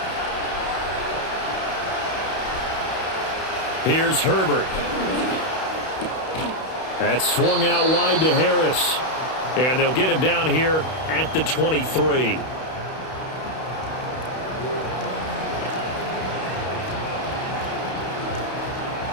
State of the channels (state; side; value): late; right; 31 ms